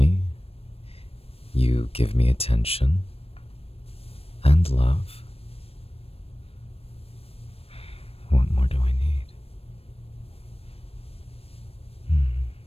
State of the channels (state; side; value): late; right; 0.28 ms